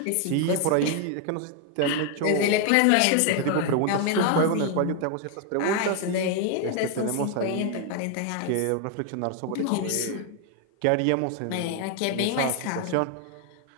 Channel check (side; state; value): both; different; correlation 0.01